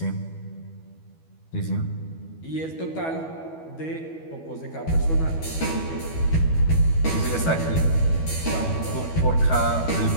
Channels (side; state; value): right; late; 12 ms